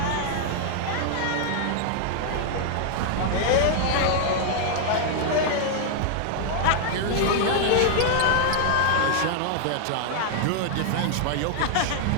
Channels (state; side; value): different; both; correlation 0.00